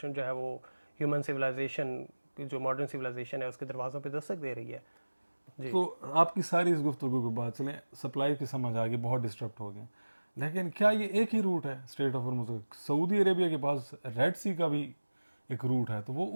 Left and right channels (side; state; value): both; inverted; correlation -1.00